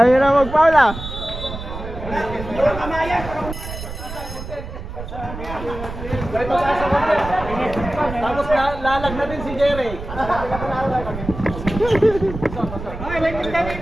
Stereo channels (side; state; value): right; noise; rumble, 9 dB below the sound